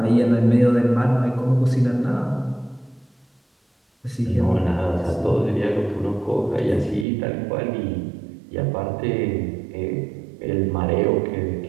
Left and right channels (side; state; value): left; drops out; at 7.1 s